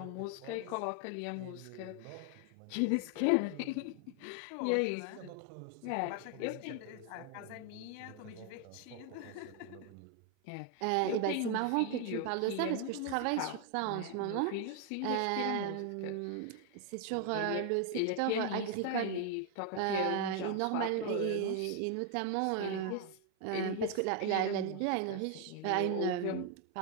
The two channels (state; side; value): different; both; correlation 0.00